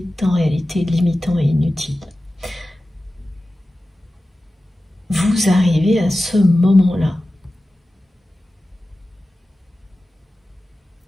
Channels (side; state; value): both; normal; correlation 0.95